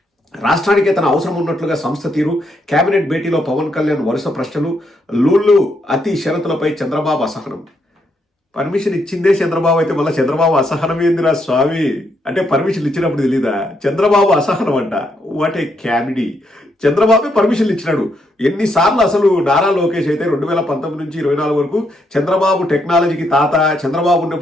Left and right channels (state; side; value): normal; both; correlation 0.77